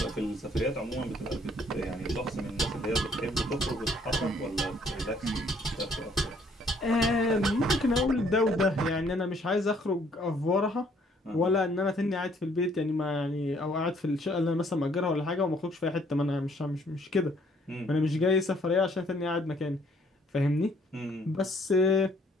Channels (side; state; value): both; normal; correlation 0.64